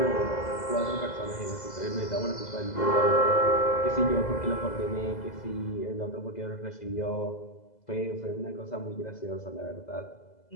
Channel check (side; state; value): right; late; 2.0 ms